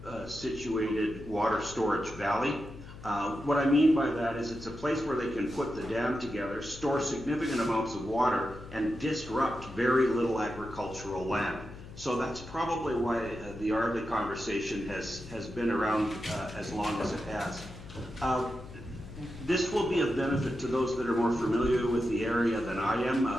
situated water storage valley. What I mean by that is it's a place where they can put the dam together, store significant amounts of water, and disrupt very little agricultural land. So that's probably why the Ardley conversation has been around as long as it has. This will be of benefit to those that are more familiar with the area than I am.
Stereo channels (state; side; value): noise; left; hum, 15 dB below the sound